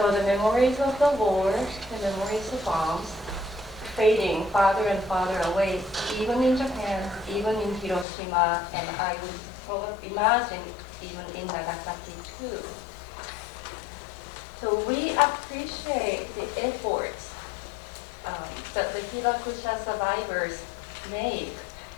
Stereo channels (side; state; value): right; drops out; at 8.1 s